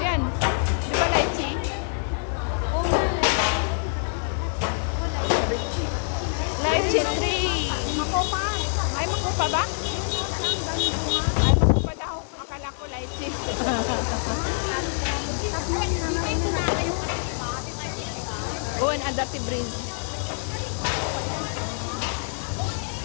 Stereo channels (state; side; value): silent; right; digital silence